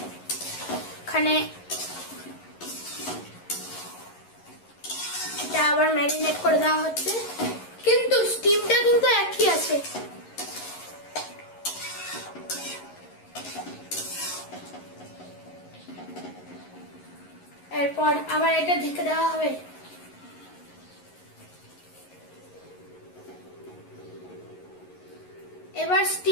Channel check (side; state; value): right; late; 11 ms